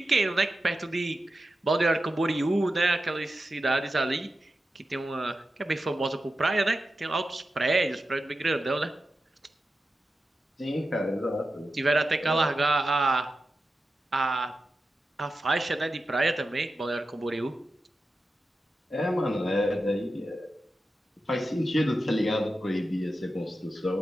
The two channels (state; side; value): normal; both; correlation 0.92